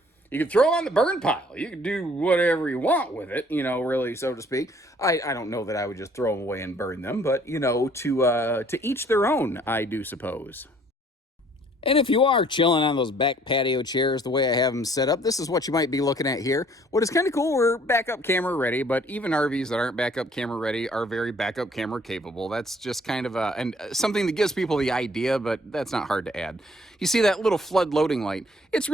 You can throw on the burn pile. You can do whatever you want with it, really, so to speak. I don't know that I would just throw them away and burn them, but, to each their own, I do suppose. And if you are chilling on those back patio chairs the way I have them set up, this is what you might be looking at here. What is kind of cool, we're backup camera ready, but even RVs that aren't backup camera ready are very backup camera capable. That's just kind of something that gives people the idea, but that's not hard to add. You see that little flood loading light? It's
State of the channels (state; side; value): normal; both; correlation 0.59